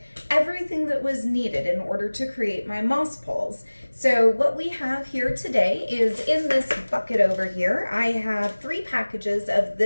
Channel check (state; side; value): inverted; both; correlation -1.00